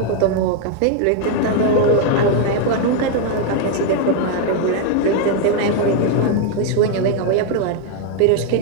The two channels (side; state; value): both; different; correlation 0.01